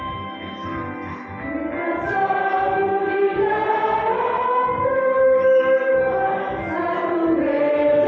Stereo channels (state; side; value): identical; both; correlation 1.00